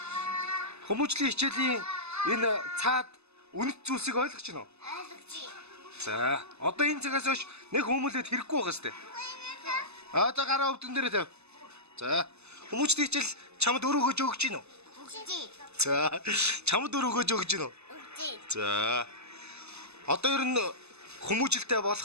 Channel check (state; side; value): late; left; 0.80 ms